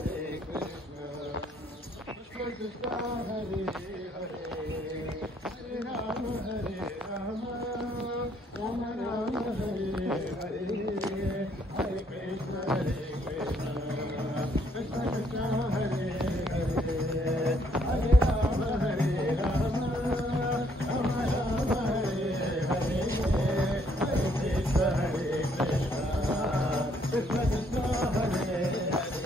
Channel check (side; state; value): both; normal; correlation 0.68